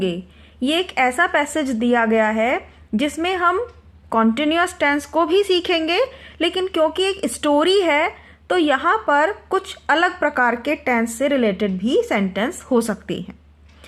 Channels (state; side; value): identical; both; correlation 1.00